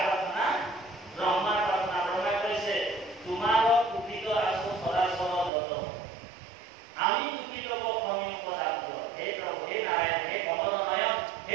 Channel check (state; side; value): drops out; left; at 5.5 s